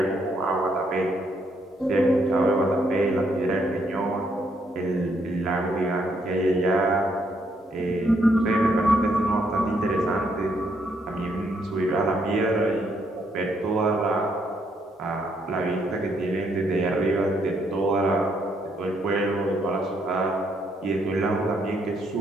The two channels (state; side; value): normal; both; correlation 0.73